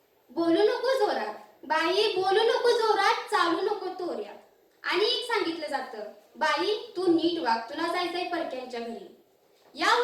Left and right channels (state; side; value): identical; both; correlation 1.00